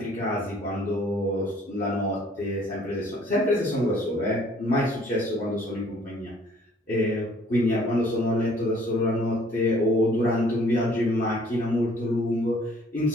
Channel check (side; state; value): both; normal; correlation 0.58